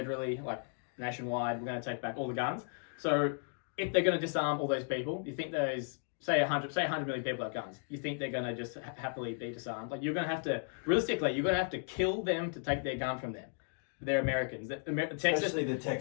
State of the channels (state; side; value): silent; right; 54 dB below the other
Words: like nationwide, we're going to take back all the guns. So if they're going to disarm all those people, you think those, say 100 million people have guns, you think they're going to just happily be disarmed? Like you're going to have to, realistically, you're going to have to kill them to take their gun from them. They're Americans. Texas, especially the